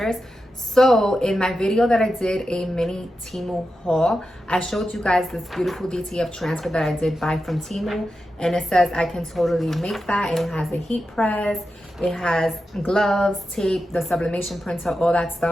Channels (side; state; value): both; normal; correlation 0.90